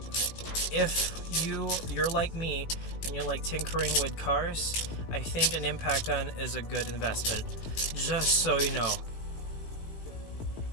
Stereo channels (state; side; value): late; right; 18 ms